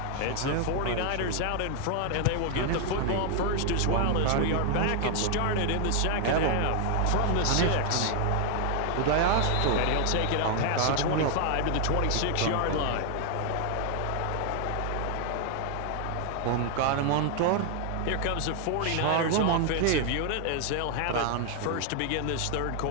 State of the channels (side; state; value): both; different; correlation 0.00